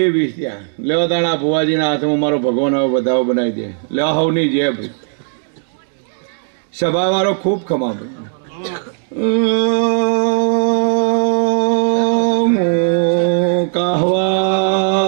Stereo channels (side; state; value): left; silent; digital silence